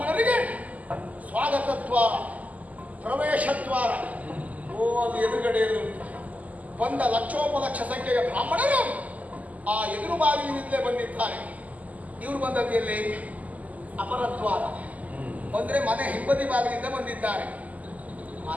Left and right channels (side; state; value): left; late; 0.075 ms